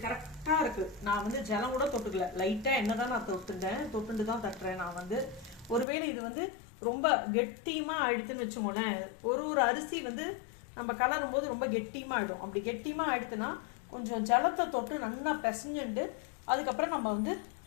கரெக்டாக இருக்குது, நான் வந்து ஜலம் கூட தொட்டுக்கல, லைட்டாக எண்ணெய் தான் நான் தொட்டுட்டு தான் தட்டுறேன். நான் வந்து ஒருவேளை இது வந்து ரொம்ப கெட்டியமாக ஆயிடுத்துன்னு வச்சுக்கோங்களேன். ஒரு அரிசி வந்து நம்ம கலரும் போது ரொம்ப கெட்டியமாக ஆயிடும். அப்படி கெட்டியமாக ஆயிடுத்துன்னா கொஞ்சம் ஜலத்தை தொட்டு நல்லா பிசைஞ்சுட்டு அதுக்கப்புறம் நம்ம வந்து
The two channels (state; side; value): drops out; right; at 5.9 s